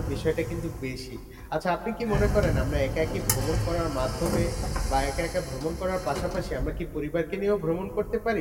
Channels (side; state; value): both; identical; correlation 1.00